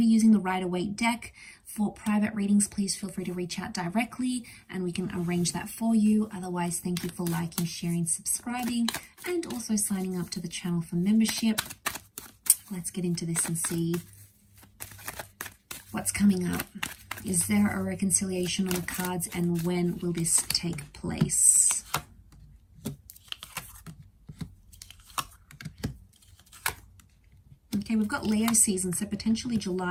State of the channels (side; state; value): both; identical; correlation 1.00